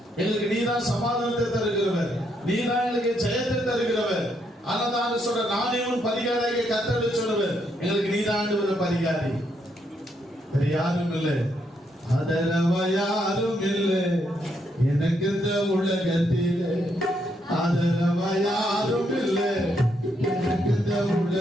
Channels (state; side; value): normal; both; correlation 0.76